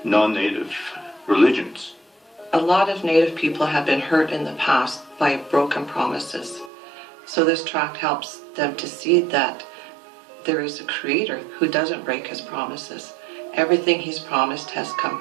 non-native religions. A lot of Native people have been hurt in the past by broken promises. So this tract helps them to see that there is a Creator who doesn't break His promises. Everything He's promised has come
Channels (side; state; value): left; drops out; at 6.7 s